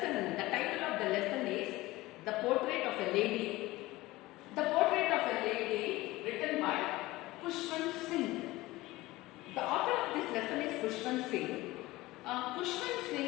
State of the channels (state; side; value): quieter; right; 19.1 dB